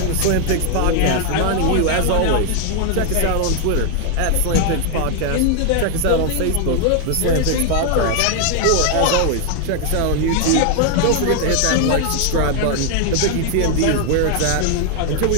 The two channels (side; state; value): both; different; correlation 0.00